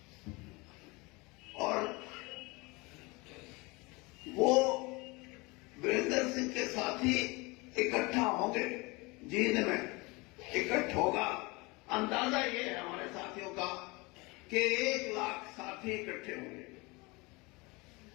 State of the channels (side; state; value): right; quieter; 25.3 dB